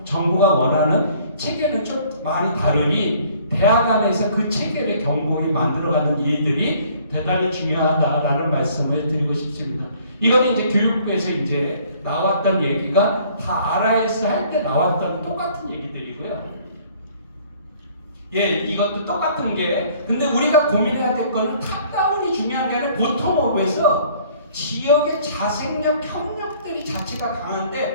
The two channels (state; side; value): inverted; both; correlation -0.57